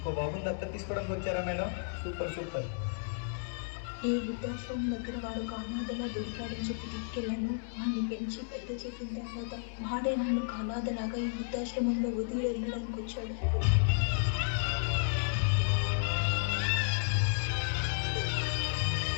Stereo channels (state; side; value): silent; right; digital silence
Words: బాబుని దత్తత తీసుకోవడానికి వచ్చారా మేడం? సూపర్. ఈ వృద్ధాశ్రమం దగ్గర వాడు ఒక అనాథలా దొరికాడని చెప్పి తీసుకెళ్ళాను. వాడిని పెంచి పెద్ద చేసిన తర్వాత వాడే నన్ను ఒక అనాథలాగా ఈ వృద్ధాశ్రమంలో వదిలి వెళ్ళడానికి వచ్చాడు.